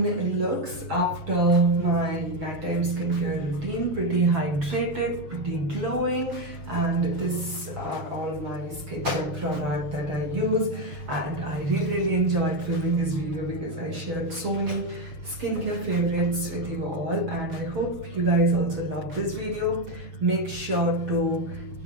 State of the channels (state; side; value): late; left; 7.0 ms